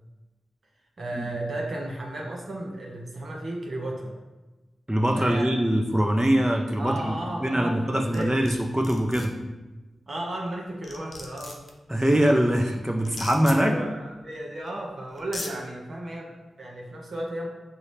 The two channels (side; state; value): both; normal; correlation 0.96